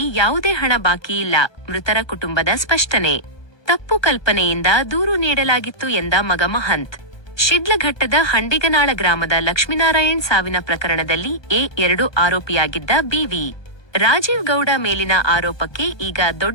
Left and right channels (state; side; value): late; right; 1.2 ms